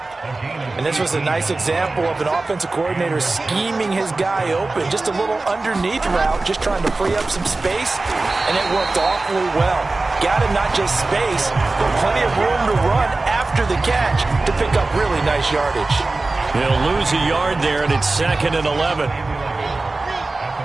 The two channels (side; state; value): left; quieter; 3.3 dB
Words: And this was a nice example of an offensive coordinator scheming his guy open. Just a little underneath route, just trying to free up some space. And it worked awfully well. Got him not just space, but plenty of room to run after the catch to pick up really nice yardage. He'll lose a yard there, and it's 2nd and 11.